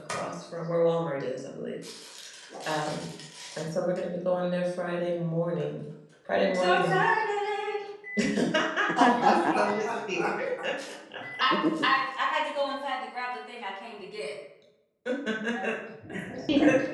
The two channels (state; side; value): identical; both; correlation 1.00